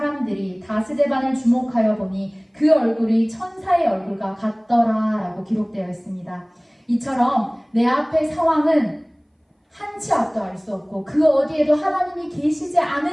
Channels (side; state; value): both; identical; correlation 1.00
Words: 다 스데반을 주목하여 보니 그 얼굴이 천사의 얼굴과 같더라 라고 기록되어 있습니다. 이처럼 내 앞의 상황은 한치 앞도 알 수 없고 그 어디에도 하나님이 계시지